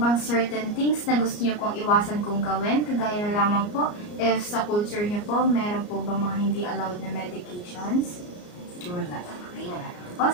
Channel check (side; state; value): right; late; 34 ms